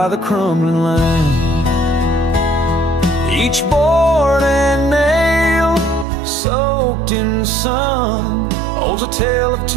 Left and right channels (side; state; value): left; drops out; at 6.1 s